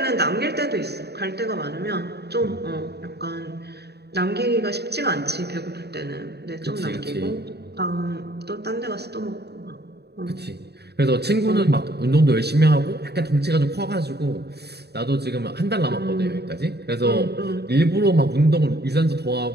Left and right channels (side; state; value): left; late; 0.48 ms